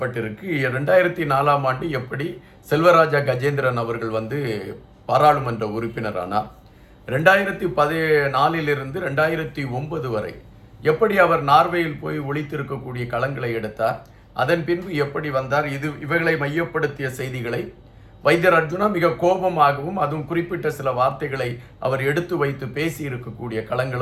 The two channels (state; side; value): identical; both; correlation 1.00